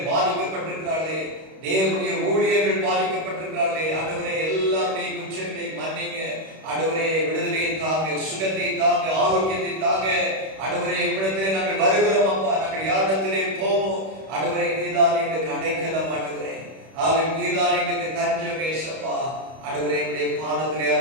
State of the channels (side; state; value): left; late; 31 ms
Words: பாதிக்கப்பட்டிருக்கிறார்களே, தேவனுடைய ஊழியர்கள் பாதிக்கப்பட்டிருக்கிறார்களே ஆண்டவரே. எல்லாருடைய குற்றங்களை மன்னிங்க ஆண்டவரே. விடுதலையை தாங்க, சுகத்தை தாங்க, ஆரோக்கியத்தை தாங்க ஆண்டவரே. உம்மிடத்திலே நாங்கள் வருகிறோம் அப்பா. நாங்கள் யாரிடத்திலே போவோம் ஆண்டவரே? நீதான் எங்களுக்கு அடைக்கலம் ஆண்டவரே. நீதான் எங்களுக்கு தஞ்சம் ஏசப்பா ஆண்டவரே. உம்முடைய பாதத்திலே